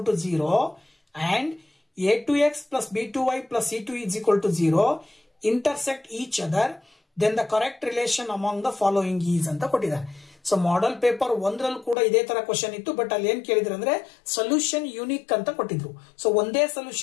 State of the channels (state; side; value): drops out; right; at 12.0 s